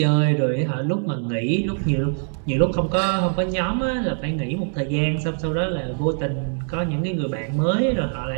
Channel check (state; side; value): silent; left; 57 dB below the other